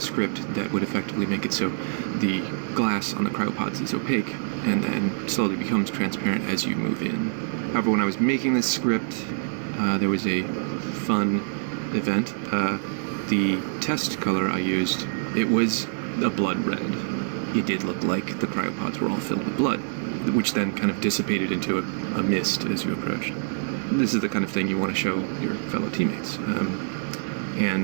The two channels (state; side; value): silent; left; digital silence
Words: script that would effectively make it so the glass on the cryopods is opaque and then slowly becomes transparent as you move in. However, when I was making this script, there was a fun event. The test color I used, it was a blood red. It did look like the cryopods were all filled with blood, which then kind of dissipated into a mist as you approached. This is the kind of thing you want to show your fellow teammates.